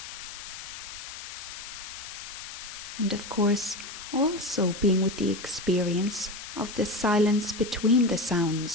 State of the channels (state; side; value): noise; left; hiss, 11 dB below the sound